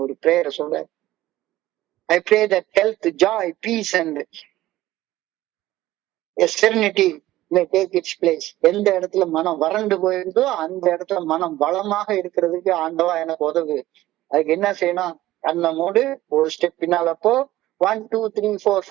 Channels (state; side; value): quieter; left; 15.7 dB